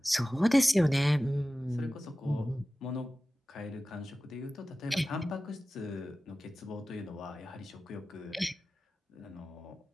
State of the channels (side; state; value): both; normal; correlation 0.96